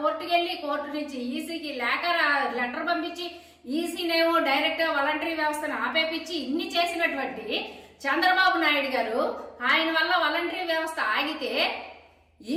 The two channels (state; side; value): identical; both; correlation 1.00